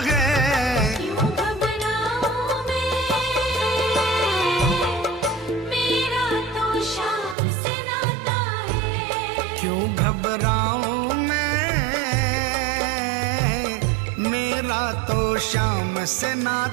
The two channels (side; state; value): left; drops out; at 7.4 s